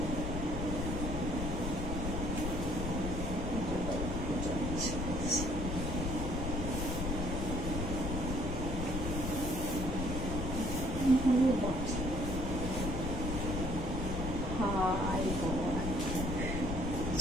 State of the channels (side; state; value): left; noise; rumble, 3 dB below the sound